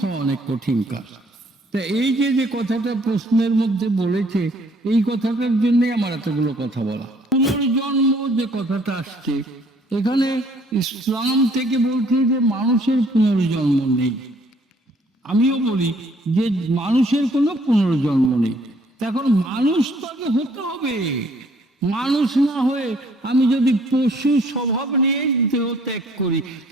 হওয়া অনেক কঠিন কাজ। তা এই যে কথাটা প্রশ্নের মধ্যে বলেছে, এই কথাটার জন্য আমার এতগুলো কথা বলা। পুনর্জন্ম যে কথাটা আসছে, এখানে ইসলাম থেকে বলছে যে মানুষের পুনর্জন্ম নেই। আমিও বলি যে মানুষের কোনো পুনর্জন্ম নেই। এখন মানুষ তাকে হতে হবে। মানুষ না হয়ে আমি যদি পশু স্বভাব নিয়ে দেহ ত্যাগ করি,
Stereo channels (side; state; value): both; normal; correlation 0.61